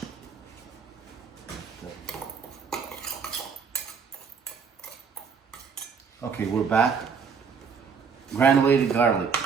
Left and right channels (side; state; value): left; quieter; 6.0 dB